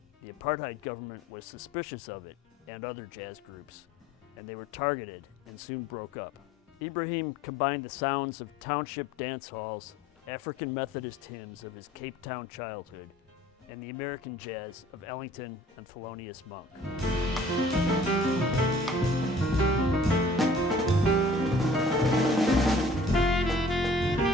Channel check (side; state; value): both; normal; correlation 0.52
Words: the apartheid government was suspicious of it and other jazz groups, and they were targeted and soon broke up. Ibrahim combined the sounds of township dance halls, African Methodist hymns of his Cape Town childhood, and the American jazz of Ellington and Thelonious Monk.